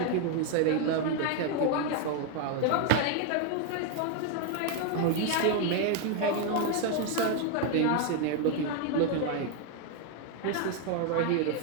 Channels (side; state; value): both; different; correlation 0.01